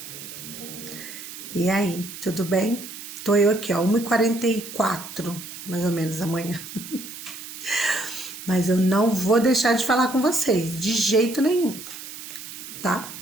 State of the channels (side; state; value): right; noise; hiss, 12 dB below the sound